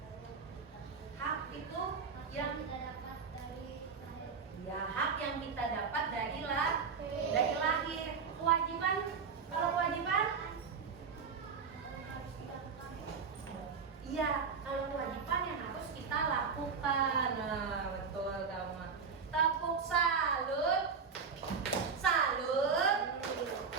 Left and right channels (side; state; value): left; quieter; 5.6 dB